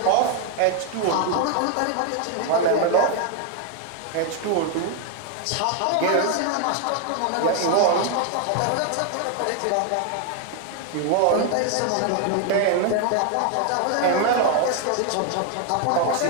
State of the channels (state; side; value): different; both; correlation 0.00